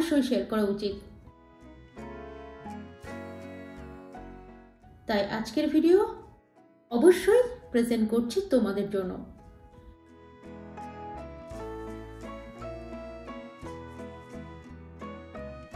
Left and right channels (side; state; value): both; identical; correlation 1.00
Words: শেয়ার করা উচিত। তাই আজকের ভিডিও অবশ্যই প্রেজেন্ট করছি তোমাদের জন্য।